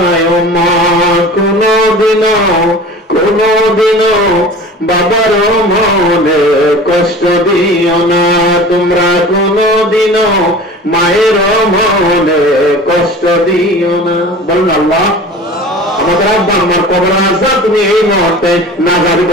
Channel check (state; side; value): normal; both; correlation 0.39